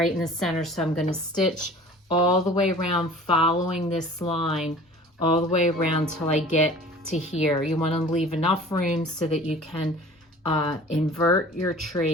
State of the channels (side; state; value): both; normal; correlation 0.45